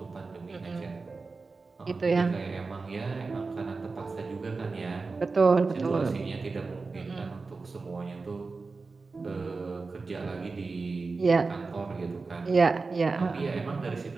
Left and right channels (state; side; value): quieter; left; 4.1 dB